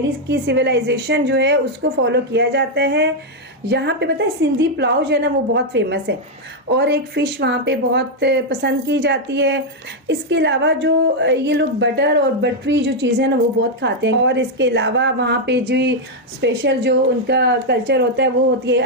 की सिविलाइजेशन जो है उसको फॉलो किया जाता है। यहाँ पे पता है सिंधी पुलाव जो है ना वो बहुत फेमस है, और एक फ़िश वहाँ पे बहुत पसंद की जाती है। इसके अलावा जो ये लोग बटर और बटरी जो चीज़ें हैं ना वो बहुत खाते हैं। और इसके अलावा वहाँ पे जो स्पेशल जो उनका कल्चर होता है वो होती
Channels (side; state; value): both; normal; correlation 0.00